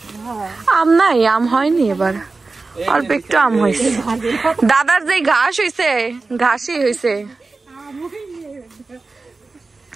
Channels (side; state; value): left; quieter; 3.8 dB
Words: আম নাই, আম হয়নি এবার, অল্প একটু আম হয়েছে। দাদার যে ঘাস হয়েছে, ঘাসই হয়েছে।